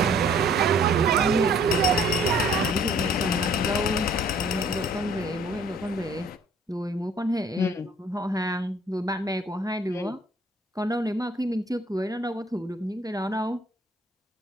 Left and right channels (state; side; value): normal; both; correlation 0.57